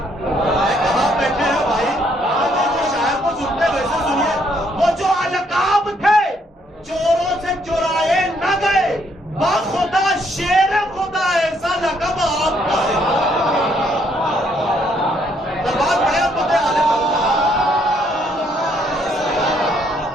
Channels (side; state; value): both; normal; correlation 0.70